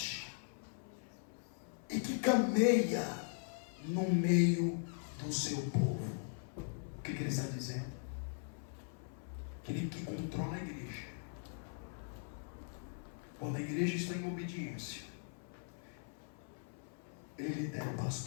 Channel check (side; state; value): right; silent; 51 dB below the other